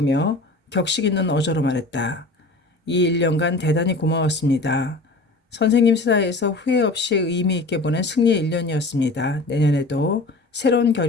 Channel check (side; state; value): right; quieter; 3.1 dB